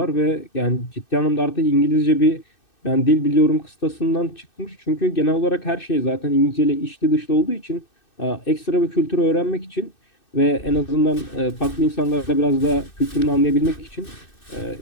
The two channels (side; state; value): right; late; 2.6 ms